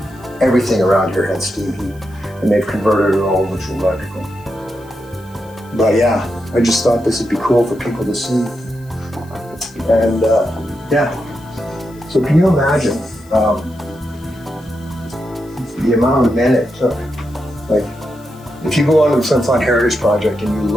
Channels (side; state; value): left; noise; hiss, 28 dB below the sound